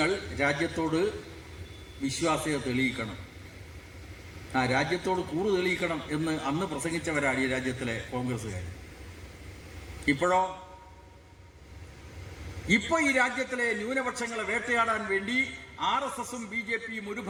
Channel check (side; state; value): both; identical; correlation 1.00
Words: രാജ്യത്തോട് വിശ്വാസ്യത തെളിയിക്കണം, രാജ്യത്തോട് കൂറ് തെളിയിക്കണം എന്ന് അന്ന് പ്രസംഗിച്ചവരാണ് ഈ രാജ്യത്തിലെ കോൺഗ്രസ്സുകാർ. ഇപ്പൊ ഈ രാജ്യത്തിലെ ന്യൂനപക്ഷങ്ങളെ വേട്ടയാടാൻ വേണ്ടി RSSും BJPയും ഒരു